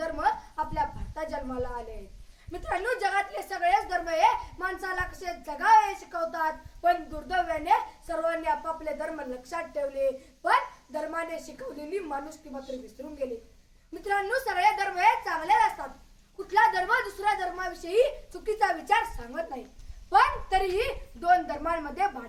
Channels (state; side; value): identical; both; correlation 1.00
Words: आपल्या भारतात जन्माला आले आहेत। मित्रांनो, जगातले सगळेच धर्म हे माणसाला कसे जगावे शिकवतात, पण दुर्दैवाने सर्वांनी आपापले धर्म लक्षात ठेवले, पण धर्माने शिकवलेली माणुसकी मात्र विसरून गेले। मित्रांनो, सगळे धर्म हे चांगले असतात। कुठला धर्म दुसऱ्या धर्माविषयी चुकीचा विचार सांगत नाही, पण तरीही दोन धर्मांमध्ये